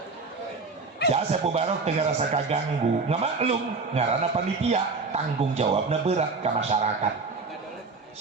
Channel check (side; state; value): left; quieter; 4.2 dB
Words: Jasa Barok teu ngarasa kaganggu, ngamaklum ngaranna panitia, tanggung jawabna berat ka masyarakat.